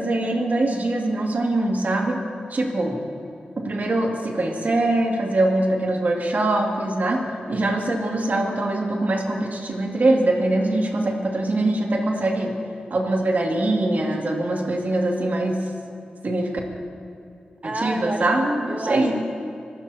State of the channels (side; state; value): both; normal; correlation 0.90